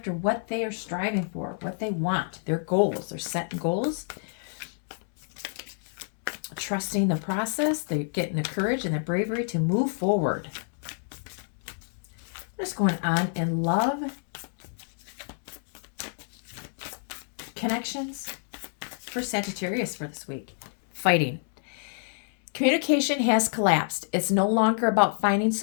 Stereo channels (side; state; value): right; silent; digital silence